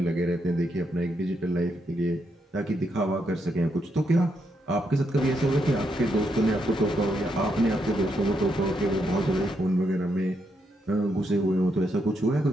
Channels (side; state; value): both; normal; correlation 0.79